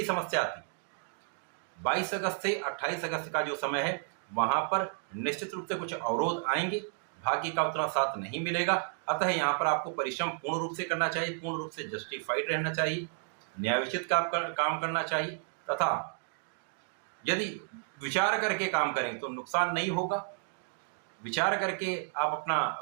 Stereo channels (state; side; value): silent; left; 56 dB below the other